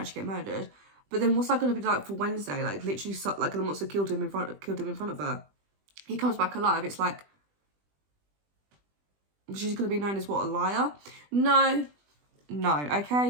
get murdered. But then what's that going to be like for Wednesday? Like literally, like the monster killed him in front of her. He comes back alive. It's like she's going to be known as what, a liar? No.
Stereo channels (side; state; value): left; late; 20 ms